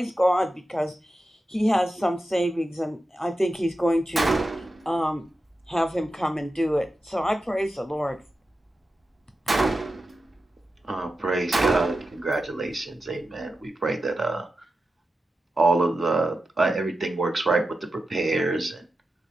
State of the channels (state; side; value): normal; both; correlation 0.91